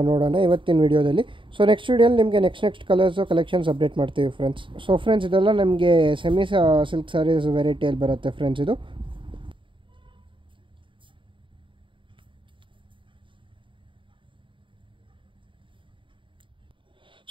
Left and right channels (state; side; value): late; left; 0.24 ms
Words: ನೋಡೋಣ ಇವತ್ತಿನ ವಿಡಿಯೋದಲ್ಲಿ. ಸೊ ನೆಕ್ಸ್ಟ್ ವಿಡಿಯೋಲಿ ನಿಮಗೆ ನೆಕ್ಸ್ಟ್ ಕಲರ್ಸು ಕಲೆಕ್ಷನ್ಸ್ ಅಪ್ಡೇಟ್ ಮಾಡ್ತೀವಿ ಫ್ರೆಂಡ್ಸ್. ಸೊ ಫ್ರೆಂಡ್ಸ್, ಇದೆಲ್ಲ ನಮಗೆ ಸೆಮಿ ಸಿಲ್ಕ್ ಸ್ಯಾರೀಸ್ ವೆರೈಟಿಯಲ್ಲಿ ಬರುತ್ತೆ ಫ್ರೆಂಡ್ಸ್. ಇದು